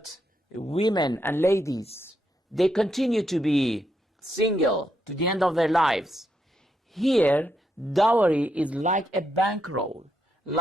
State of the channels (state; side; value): normal; both; correlation 0.80